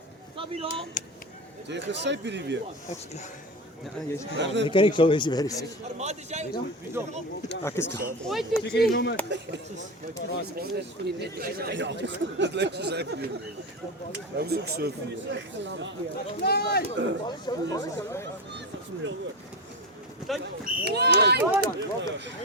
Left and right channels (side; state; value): both; normal; correlation 0.22